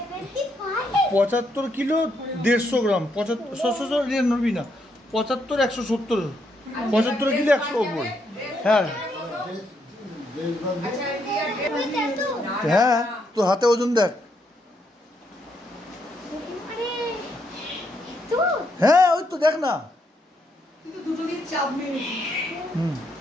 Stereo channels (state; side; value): normal; both; correlation 0.76